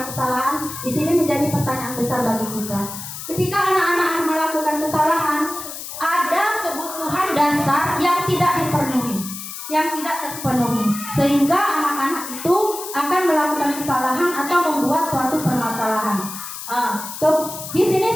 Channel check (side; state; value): left; noise; hiss, 9 dB below the sound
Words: kesalahan, di sini menjadi pertanyaan besar bagi kita. Ketika anak-anak melakukan kesalahan, ada kebutuhan dasar yang tidak terpenuhi, sehingga anak-anak itu akan melakukan kesalahan atau membuat suatu permasalahan. Di sini